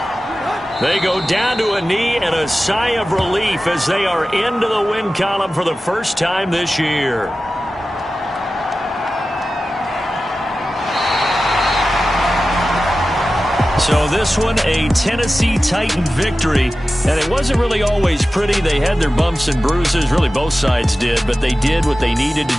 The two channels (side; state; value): both; normal; correlation 0.94